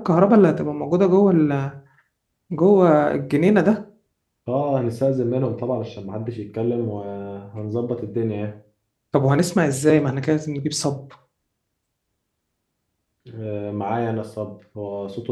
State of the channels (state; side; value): identical; both; correlation 1.00